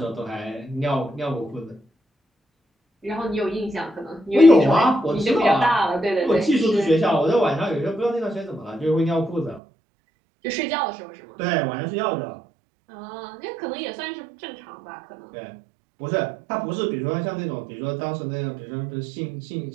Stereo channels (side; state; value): left; drops out; at 9.6 s